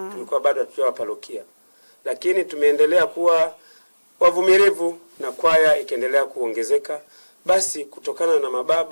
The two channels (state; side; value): inverted; both; correlation -1.00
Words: tulikuwa bado tukiwa parokia. Lakini tumeendelea kuwa wavumilivu na kwaya ikaendelea kuongezeka. Basi kutokana na